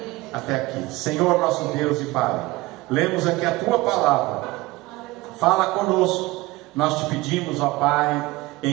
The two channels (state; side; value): quieter; left; 20.4 dB